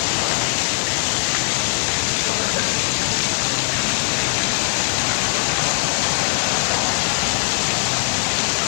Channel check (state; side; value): silent; right; 66 dB below the other